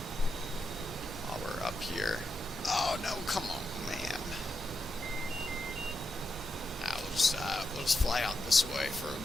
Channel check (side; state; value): both; normal; correlation 0.86